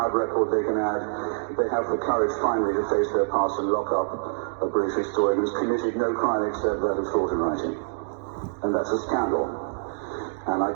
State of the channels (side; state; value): left; silent; digital silence